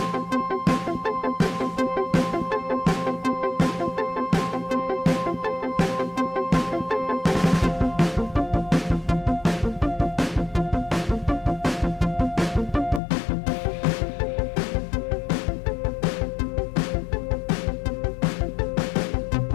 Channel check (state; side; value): drops out; right; at 13.0 s